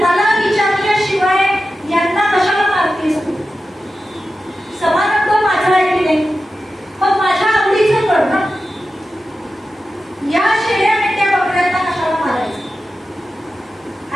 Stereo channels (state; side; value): normal; both; correlation 0.92